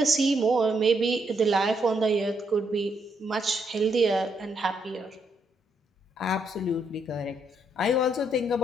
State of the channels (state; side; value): normal; both; correlation 0.76